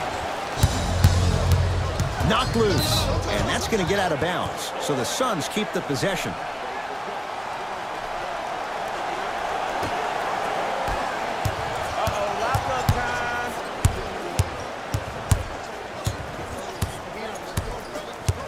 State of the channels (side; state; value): both; identical; correlation 1.00